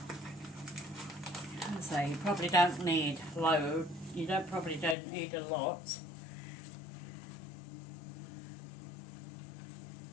So you probably don't need loads. You probably don't need a lot.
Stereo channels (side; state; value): right; drops out; at 5.0 s